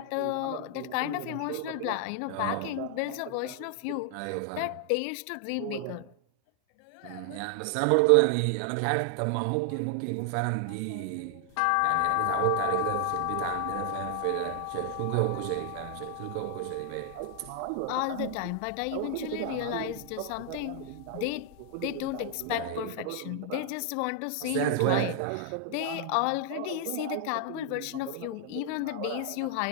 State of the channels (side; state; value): both; different; correlation 0.00